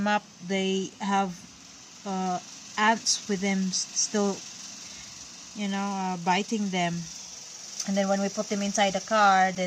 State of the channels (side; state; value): both; identical; correlation 1.00